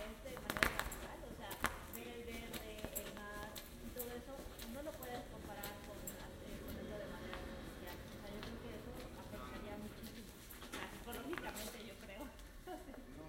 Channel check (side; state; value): both; identical; correlation 1.00